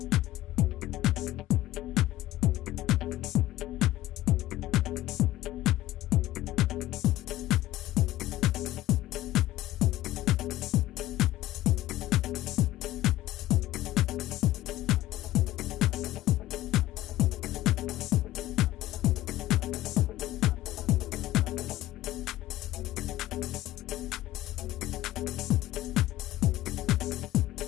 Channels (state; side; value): quieter; right; 15.5 dB